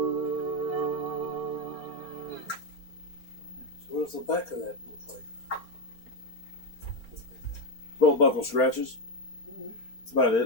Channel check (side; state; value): right; late; 4.4 ms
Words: So what does the back of that look like? Belt buckle scratches. That's about